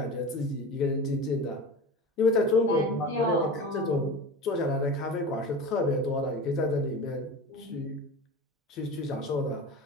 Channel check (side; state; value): both; normal; correlation 0.31